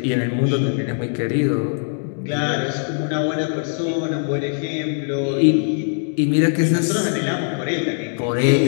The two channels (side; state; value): right; silent; digital silence